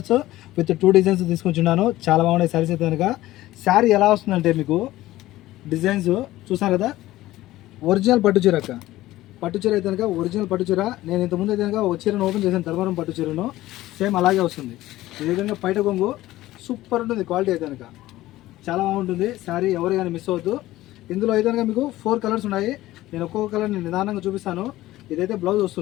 విత్ 2 డిజైన్స్ తీసుకొచ్చున్నాను. చాలా బాగున్నాయి శారీస్ అయితే కనుక. శారీ ఎలా వస్తుందంటే మీకు డిజైన్స్ చూస్తారు కదా, ఒరిజినల్ పట్టు చీర అక్క. పట్టు చీర అయితే కనుక ఒరిజినల్ పట్టు చీర. నేను ఇంతకుముందు అయితే కనుక ఒక చీరను ఓపెన్ చేశాను, ధర్మవరం పట్టు చీరను. సేమ్ అలాగే వస్తుంది. ఈ విధంగా పైట కొంగు సూపర్ ఉంటుంది. క్వాలిటీ అయితే కనుక చాలా బాగుంటుంది శారీ. ఎవరు కానీ మిస్ అవ్వద్దు. ఇందులో అయితే కనుక మీకు 4 కలర్స్ ఉన్నాయి. నేను ఒక్కొక్క కలర్ని నిదానంగా చూపిస్తాను. ఇదైతే బ్లౌజ్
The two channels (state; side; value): quieter; right; 16.2 dB